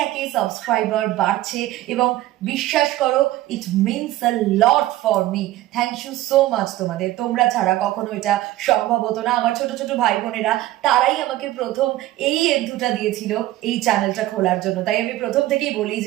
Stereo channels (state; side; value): quieter; left; 15.7 dB